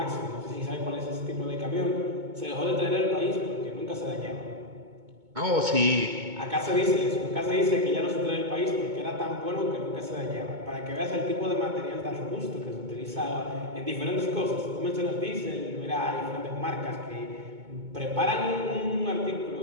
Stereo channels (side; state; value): left; late; 2.2 ms